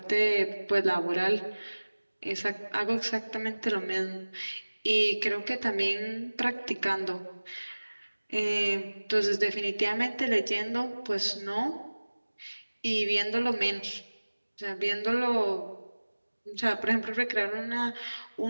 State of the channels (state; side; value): inverted; both; correlation -1.00